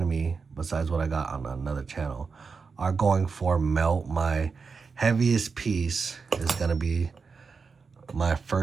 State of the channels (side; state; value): left; quieter; 5.1 dB